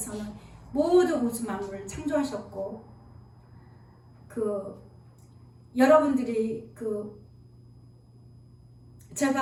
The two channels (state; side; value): identical; both; correlation 1.00